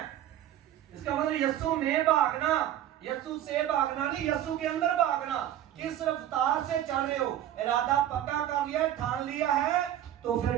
इसका मतलब यीशु में भागना, यीशु से भागना नहीं, यीशु के अंदर भागना। किस रफ्तार से चल रहे हो? इरादा पक्का कर लिया, ठान लिया है, तो फिर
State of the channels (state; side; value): quieter; left; 11.9 dB